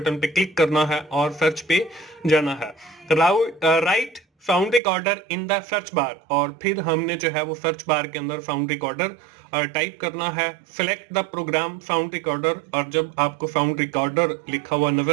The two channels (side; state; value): left; drops out; at 4.8 s